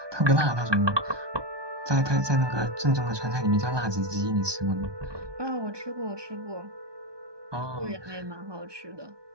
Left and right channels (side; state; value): left; late; 1.2 ms